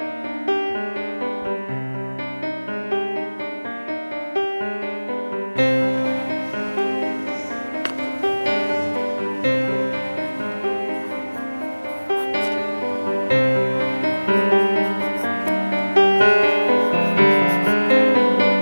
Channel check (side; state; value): both; inverted; correlation -1.00